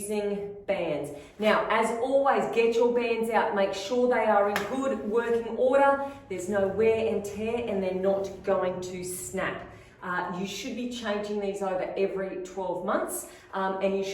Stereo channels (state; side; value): identical; both; correlation 1.00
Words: bands. Now, as always, get your bands out. Make sure they are in good working order. There's no wear and tear and they're not going to snap. You should be changing these over every 12 months and you